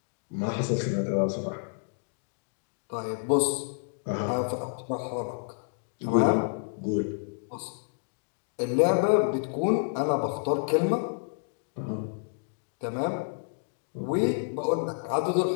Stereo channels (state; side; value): silent; right; digital silence